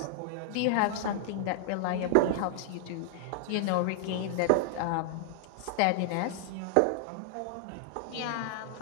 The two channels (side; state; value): both; different; correlation -0.01